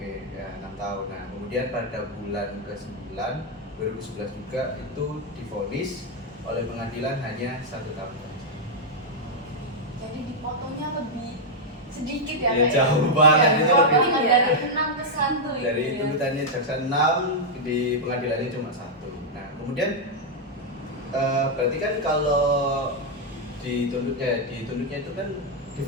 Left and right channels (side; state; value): both; normal; correlation -0.02